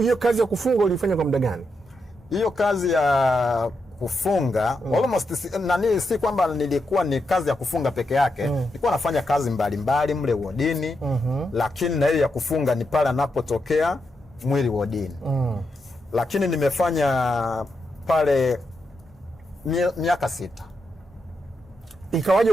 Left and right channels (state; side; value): normal; both; correlation 0.84